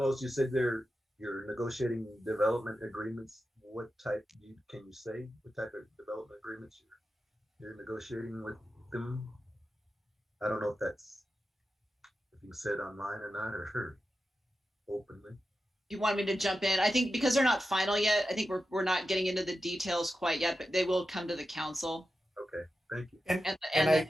you said you're negotiating development agreements. What type can you say? What type of development agreements you're negotiating with them? I don't know if you said online or not, or openly. You want me to jump in? I think because they're not final yet, I think we're not getting into the details quite yet, but they will come to the council. Okay, thank you. And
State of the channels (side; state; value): both; normal; correlation 0.91